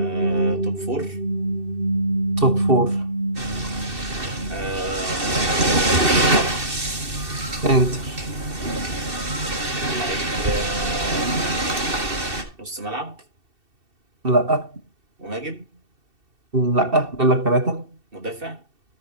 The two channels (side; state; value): left; late; 2.7 ms